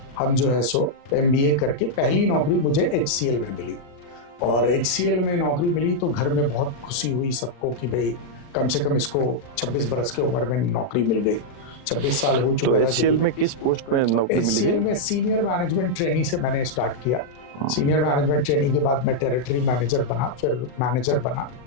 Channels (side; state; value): right; late; 40 ms